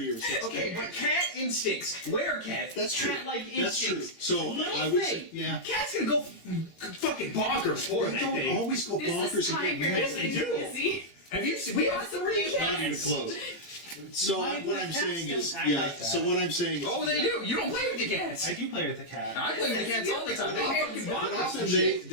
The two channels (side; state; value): right; late; 18 ms